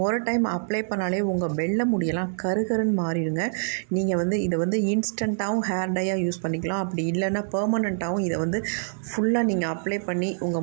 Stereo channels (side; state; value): left; silent; digital silence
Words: ஒரு டைம் அப்ளை பண்ணாலே உங்கள் வெள்ளை முடியெல்லாம் கருகருன்னு மாறிடுங்க. நீங்கள் இதை இன்ஸ்டண்ட்டாகவும் ஹேர் டையாக யூஸ் பண்ணிக்கலாம். அப்படி இல்லைன்னா பெர்மனண்ட்டாகவும் இதை ஃபுல்லாக நீங்கள் அப்ளை பண்ணி